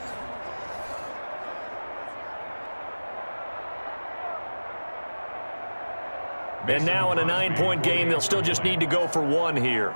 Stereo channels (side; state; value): both; inverted; correlation -1.00